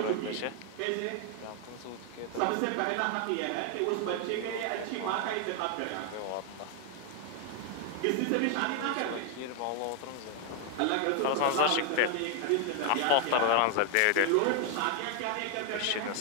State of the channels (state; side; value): different; both; correlation 0.00